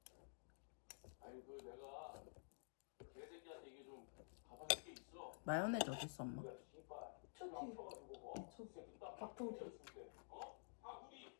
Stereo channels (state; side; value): silent; right; digital silence